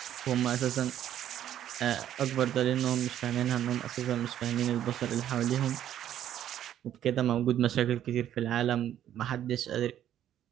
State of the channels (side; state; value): left; quieter; 11.0 dB